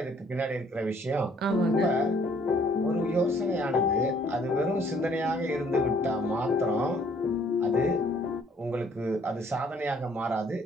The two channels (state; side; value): normal; both; correlation 0.62